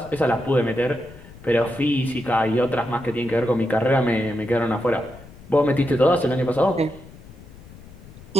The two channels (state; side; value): noise; left; rumble, 19 dB below the sound